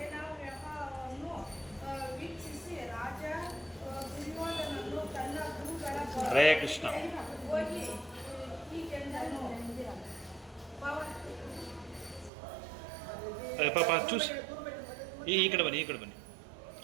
ವ್ಯೂಹವನ್ನು ವೀಕ್ಷಿಸಿ ರಾಜ ದುರ್ಯೋಧನನು ತನ್ನ ಗುರುಗಳ ಹರೇ ಕೃಷ್ಣ ಹೋಗಿ ಹೀಗೆಂದನು. ಪಾಪ ಚೂಸ್ ಈ ಕಡೆ ಬನ್ನಿ.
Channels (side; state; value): left; drops out; at 12.3 s